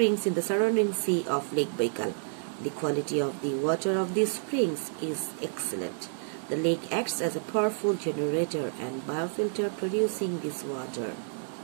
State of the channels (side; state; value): left; silent; digital silence